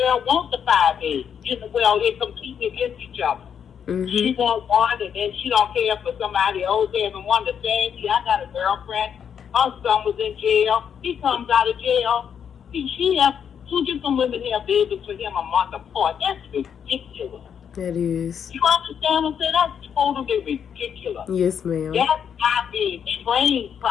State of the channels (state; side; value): quieter; right; 7.9 dB